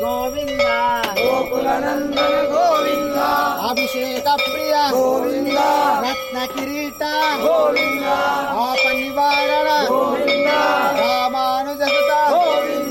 గోవింద గోకుల నందన గోవింద అభిషేక ప్రియ గోవింద రత్న కిరీట గోవింద ఆప నివారణ గోవింద రామానుజసుత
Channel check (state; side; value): identical; both; correlation 1.00